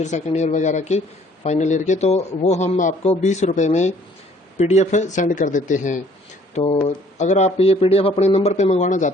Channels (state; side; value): normal; both; correlation 0.59